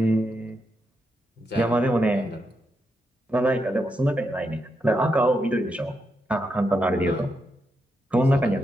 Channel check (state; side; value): normal; both; correlation 0.83